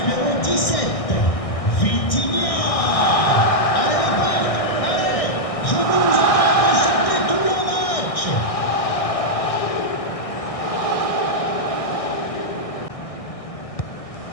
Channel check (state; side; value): late; right; 1.6 ms